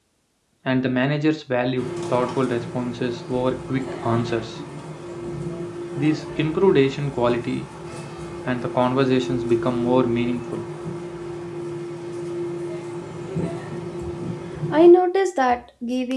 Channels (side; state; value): both; identical; correlation 1.00